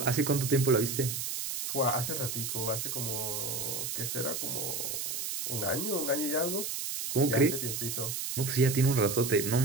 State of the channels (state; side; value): noise; right; hiss, 3 dB below the sound